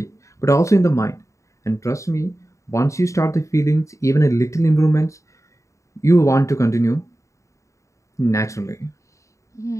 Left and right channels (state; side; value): late; right; 0.15 ms